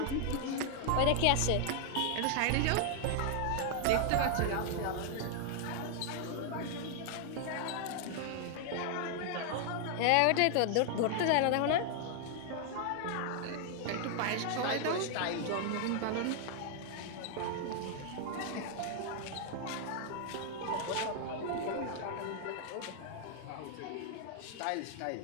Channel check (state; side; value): different; both; correlation 0.00